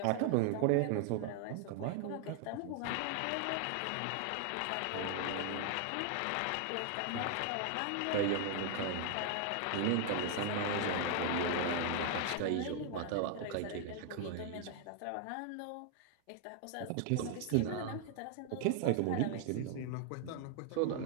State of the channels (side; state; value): both; different; correlation 0.00